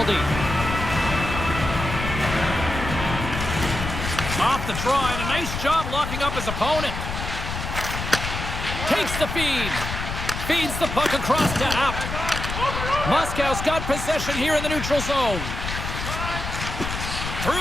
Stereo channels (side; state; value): left; noise; rumble, 5 dB below the sound